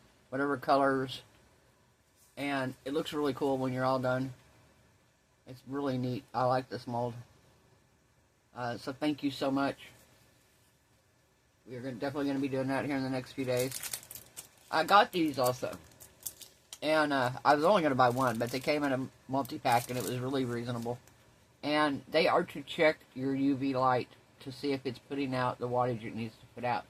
whatever colors, and it looks really cool when you're all done. It's really neat. I like this mold. So thank you so much. We're definitely going to be doing that here in the next few days. I got these also. And I was only going to buy one, but they came in a multi-pack and it was really reasonable. And they are to check your UV light to see if it's putting out the wattage it needs to put out.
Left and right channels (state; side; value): identical; both; correlation 1.00